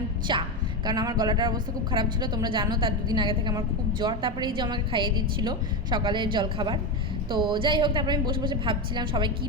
চা। কারণ আমার গলাটার অবস্থা খুব খারাপ ছিল, তোমরা জানো, তার দুদিন আগে থেকে আমার খুব জ্বর। তারপরে এই যে আমাকে খাইয়ে দিচ্ছিলো সকালের জলখাবার। তো যাই হোক, তারপরে আমি বসে বসে ভাবছিলাম সবাই কী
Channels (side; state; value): both; normal; correlation 0.14